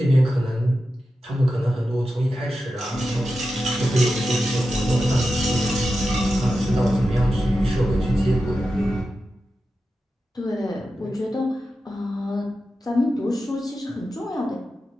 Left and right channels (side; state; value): both; normal; correlation 0.91